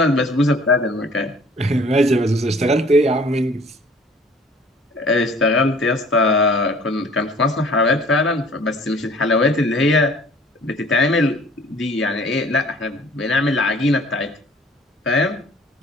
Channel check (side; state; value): both; normal; correlation 0.52